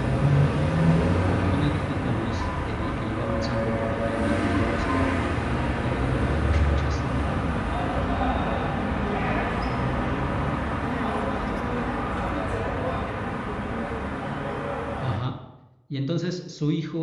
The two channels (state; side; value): identical; both; correlation 1.00